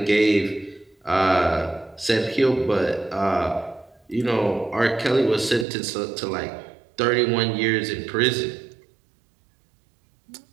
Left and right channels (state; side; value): drops out; left; at 5.7 s